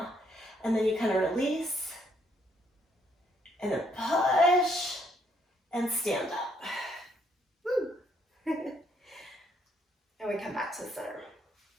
And then you kind of release, and then push, and stand up. Woo. And we come back to the center.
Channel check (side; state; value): both; normal; correlation 0.70